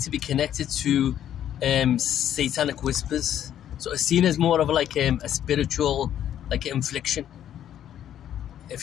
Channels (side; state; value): right; quieter; 10.6 dB